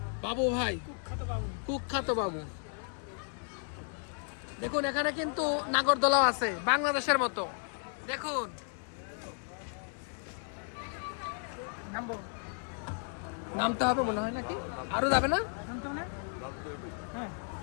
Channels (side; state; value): right; silent; 55 dB below the other